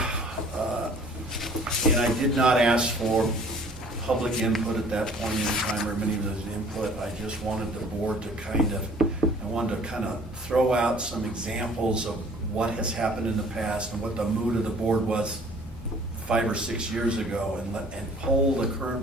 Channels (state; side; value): normal; both; correlation 0.53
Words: and I did not ask for public input at that point in time, or many of those input. I just wanted the board to kind of throw out some examples of what has happened in the past and what the mood of the board was 5 or 6 years ago, and poll the